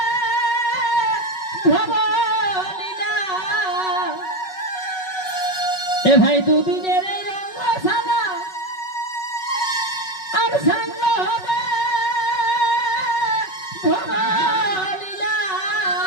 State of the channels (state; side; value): late; right; 5.4 ms